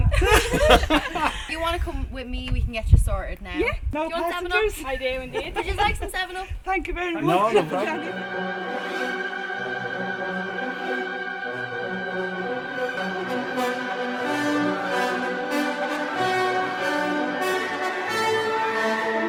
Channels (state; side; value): identical; both; correlation 1.00